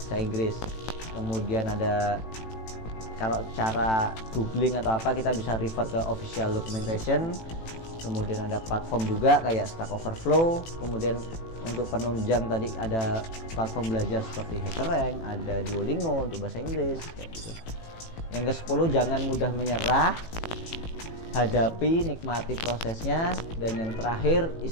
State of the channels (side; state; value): right; late; 18 ms